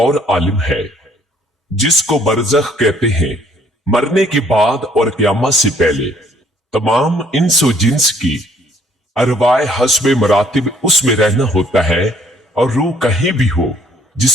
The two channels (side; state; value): both; normal; correlation 0.62